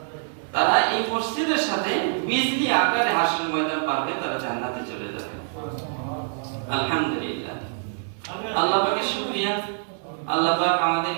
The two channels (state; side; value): silent; left; 62 dB below the other